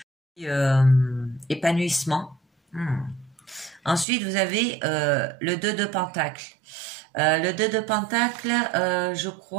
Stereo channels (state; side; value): drops out; left; at 4.0 s